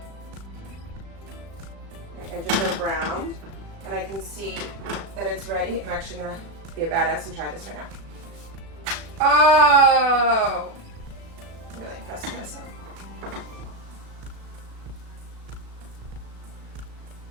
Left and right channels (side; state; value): left; late; 36 ms